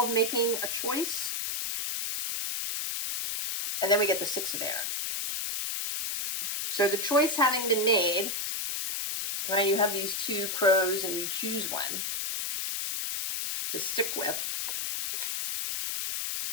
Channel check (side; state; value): left; noise; hiss, 2 dB below the sound